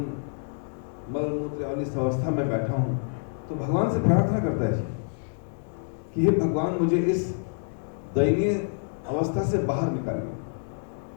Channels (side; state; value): right; silent; digital silence